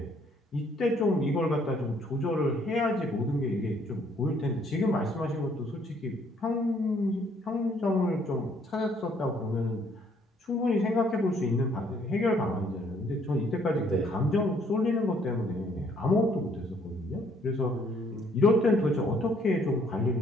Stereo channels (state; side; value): normal; both; correlation 0.65